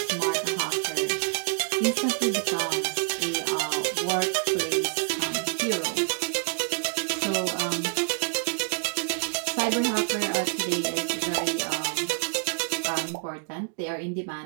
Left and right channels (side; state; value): left; silent; digital silence